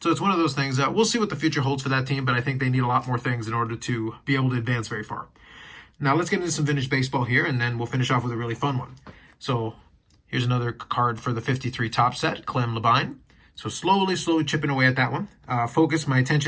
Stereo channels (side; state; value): both; identical; correlation 1.00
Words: it's one of those things. We'll see what the future holds for that team, but I think they need a lot more things in order to be able to advance very far. Now let's get into some vintage baseball here, and then we'll finish off with a really fun one. So here's another card for the 53 top set, Clem Labine. So slowly chipping away at that one. My